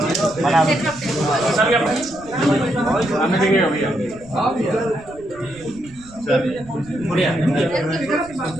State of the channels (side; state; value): right; noise; rumble, 22 dB below the sound